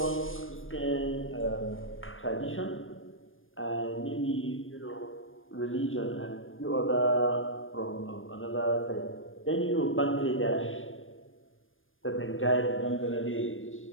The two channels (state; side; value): late; right; 0.59 ms